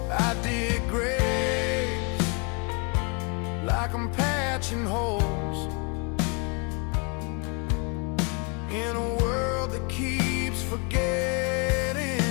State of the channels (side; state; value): right; quieter; 34.1 dB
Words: I dig graves like I'm patching holes in a world that keeps